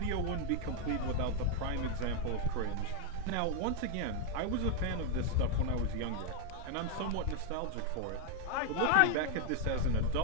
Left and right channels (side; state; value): both; different; correlation 0.00